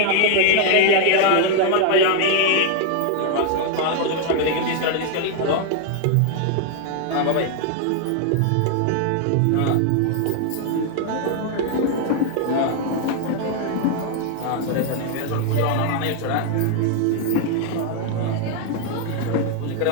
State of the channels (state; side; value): different; both; correlation 0.00